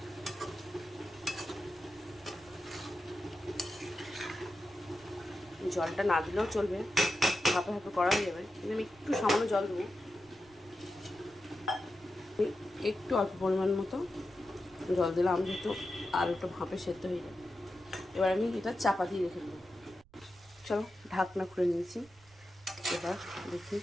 জলটা না দিলেও চলবে, হাঁপে হাঁপে করা হয়ে যাবে, কিন্তু আমি একটু সামান্য জল দেবো, একটু অল্প পরিমাণ মতো জল দিলাম যেহেতু আলুটা ভাঁপে সেদ্ধ হয়ে যাবে। এবার আমি এটা চাপা দিয়ে রেখে দেবো। চলো ঢাকনা খুলে নিয়েছি, এবার দেখি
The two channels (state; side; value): noise; right; rumble, 28 dB below the sound